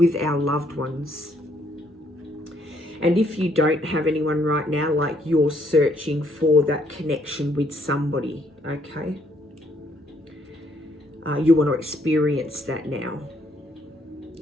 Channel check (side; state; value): both; normal; correlation 0.69